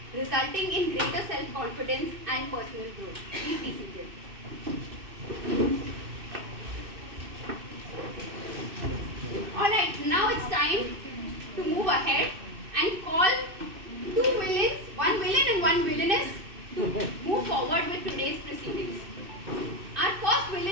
resulting in greater self-confidence and personal growth. Please be seated. Alright, now it's time to move ahead and call two villains, one villain and one villainess, to move forward with today's proceedings. Our first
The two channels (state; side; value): late; left; 2.6 ms